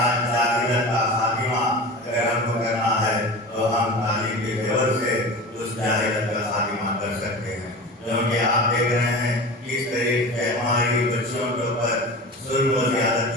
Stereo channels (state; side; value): normal; both; correlation 0.32